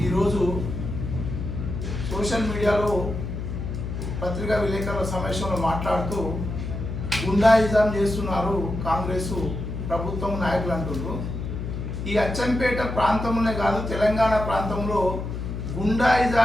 ఈరోజు సోషల్ మీడియాలో పత్రికా విలేకరుల సమావేశంలో మాట్లాడుతూ గుండాయిజం చేస్తున్నారు కాంగ్రెస్ ప్రభుత్వం నాయకులు అంటున్నారు. ఈ అచ్చంపేట ప్రాంతంలోనే కాదు, తెలంగాణ ప్రాంతంలో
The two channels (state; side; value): noise; left; hum, 5 dB below the sound